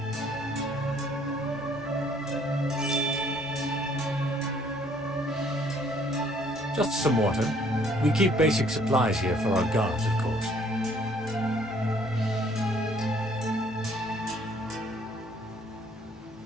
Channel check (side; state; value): both; normal; correlation 0.61